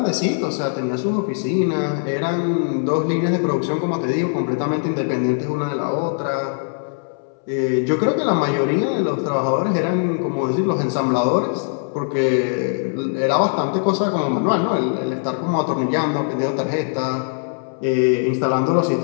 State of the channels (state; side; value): silent; right; 63 dB below the other